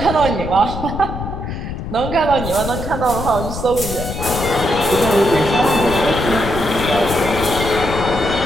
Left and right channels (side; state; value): left; noise; rumble, 6 dB below the sound